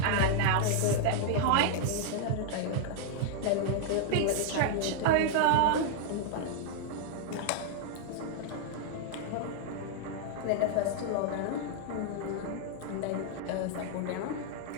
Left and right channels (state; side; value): different; both; correlation 0.00